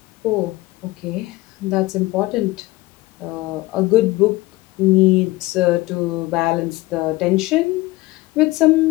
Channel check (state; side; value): quieter; right; 19.8 dB